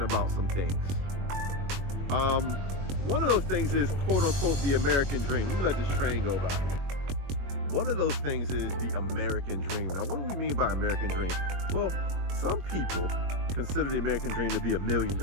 some things. One of those things is quote unquote the American dream. Let me let this train go by. One of those things is the American dream. Now, what do we mean by American dream? Well, some people consider the American dream to be $1 million,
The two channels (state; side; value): late; left; 21 ms